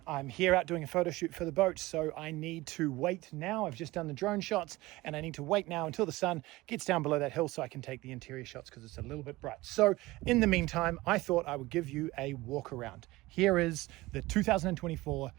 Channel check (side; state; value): left; quieter; 19.8 dB